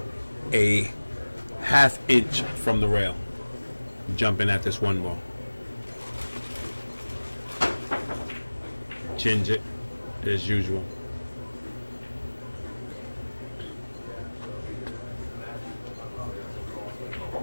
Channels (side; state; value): both; inverted; correlation -1.00